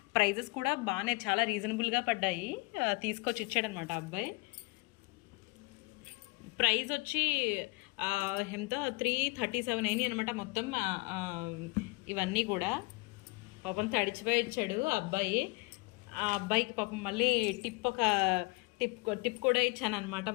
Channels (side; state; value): right; quieter; 26.5 dB